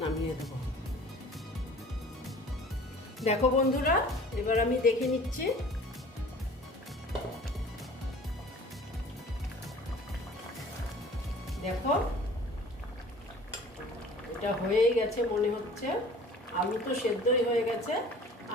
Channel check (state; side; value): normal; both; correlation 0.46